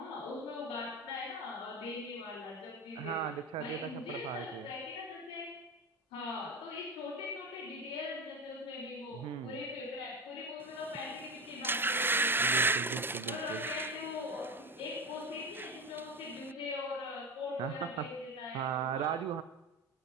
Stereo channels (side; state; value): both; normal; correlation 0.22